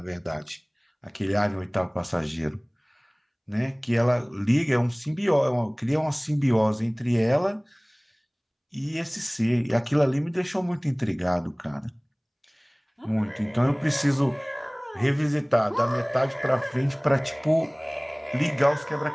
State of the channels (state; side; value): identical; both; correlation 1.00